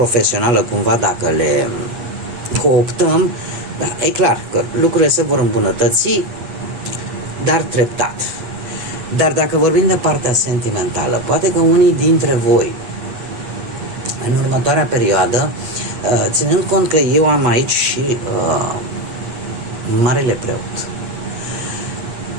cumva, dacă le cooptăm, da, e clar că lucrurile se vor îmbunătăți, dar treptat. Dar dacă vorbim de partea sentimentală, poate că unii dintre voi în următoarea perioadă, ținând cont că eu am aici și Marele Preot,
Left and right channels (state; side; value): late; left; 8.4 ms